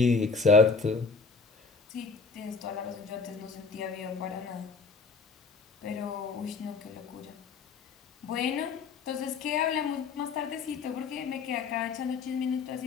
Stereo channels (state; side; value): quieter; right; 4.7 dB